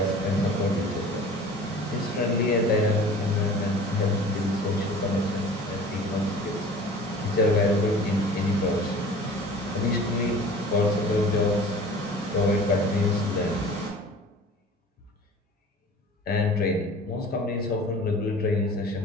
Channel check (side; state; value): both; normal; correlation 0.43